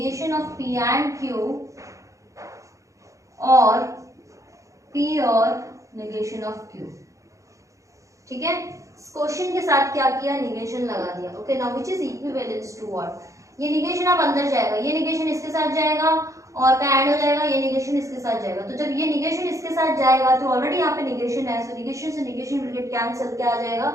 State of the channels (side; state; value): left; late; 0.15 ms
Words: of p and q और p और निगेशन ऑफ q, ठीक है। क्वेश्चन के साथ क्या किया, निगेशन लगा दिया, okay. Now which is equivalence to what, ये निगेशन अब अंदर जाएगा, ये निगेशन इसके साथ जाएगा और का ऐड हो जाएगा, ये निगेशन इसके साथ जाएगा। तो जब ये निगेशन इसके साथ जाएगा तो ऑलरेडी यहाँ पे निगेशन है, सो निगेशन से निगेशन विल गेट कैंसिल, क्या आ जाएगा,